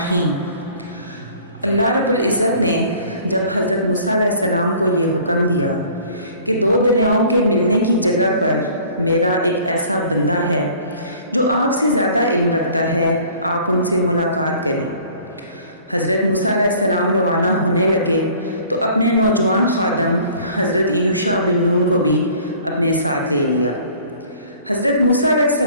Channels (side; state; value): both; inverted; correlation -0.51